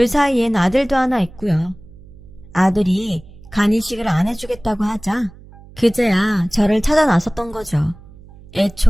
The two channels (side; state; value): right; noise; hum, 21 dB below the sound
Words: 사이엔 아들도 하나 있고요. 아들이 간이식을 안 해주겠다고 하자 그제야 저를 찾아 나섰던 거죠.